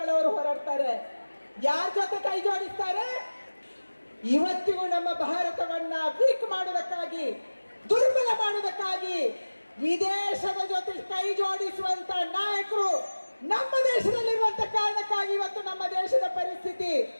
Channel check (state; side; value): inverted; both; correlation -1.00